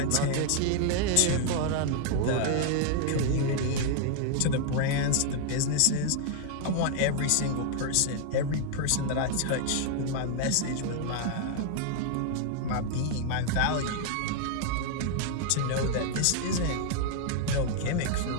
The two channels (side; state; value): both; different; correlation 0.00